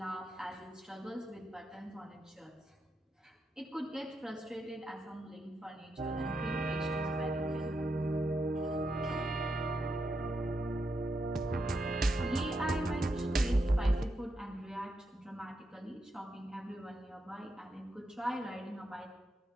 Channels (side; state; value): both; normal; correlation 0.83